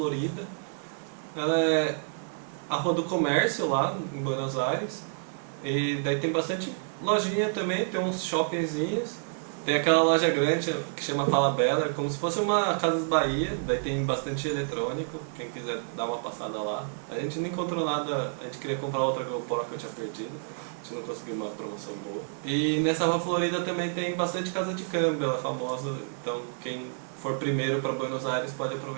Ela é a Rua do Comércio lá em Buenos Aires. E daí tem bastante lojinha também, tem uns shoppingzinhos. Tem aquela loja grande que chama Falabella, é como se fosse uma Casas Bahia, daí tem bastante eletrônico, quem quiser dar uma passada lá. A gente não encontrou nada, a gente queria comprar outra GoPro que eu tinha perdido, a gente não conseguiu uma promoção boa. E nessa Rua Florida também tem bastante casa de câmbio, ela é famosa, então quem for primeiro para Buenos Aires pode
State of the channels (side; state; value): left; silent; digital silence